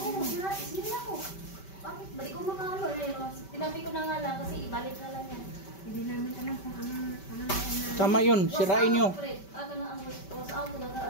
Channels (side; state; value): right; late; 5.2 ms